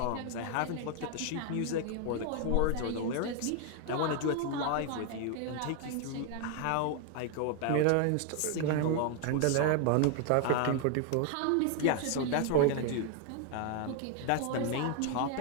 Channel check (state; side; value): different; both; correlation 0.00